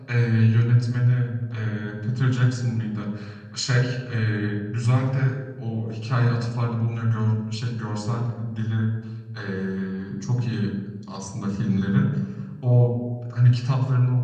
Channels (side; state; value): both; identical; correlation 1.00